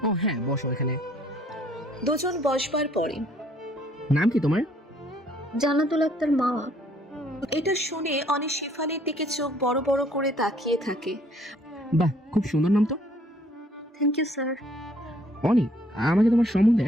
ও হ্যাঁ, বসো এখানে। দুজন বসবার পরে নাম কি তোমার? জান্নাতুল আক্তার মামা। এটা শুনে অনি শেফালির দিকে চোখ বড় বড় করে তাকিয়ে থাকে। বাহ, খুব সুন্দর নাম তো। Thank you sir. অনি আমাকে তোমার সম্বন্ধে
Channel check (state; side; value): normal; both; correlation 0.62